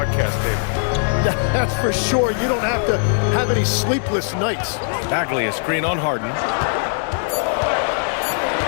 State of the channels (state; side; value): silent; right; 55 dB below the other